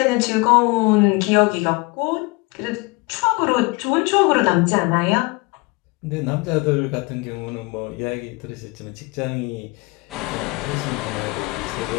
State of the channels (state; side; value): quieter; right; 26.0 dB